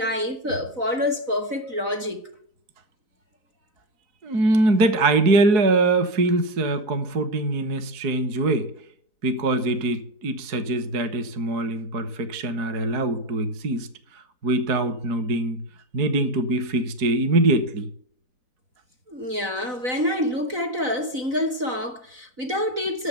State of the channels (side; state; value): left; late; 4.0 ms